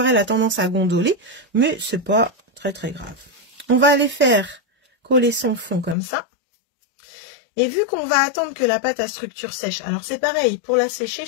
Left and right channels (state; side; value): drops out; right; at 6.0 s